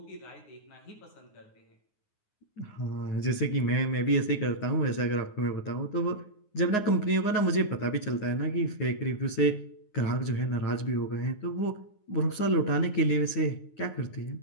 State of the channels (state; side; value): late; right; 9.5 ms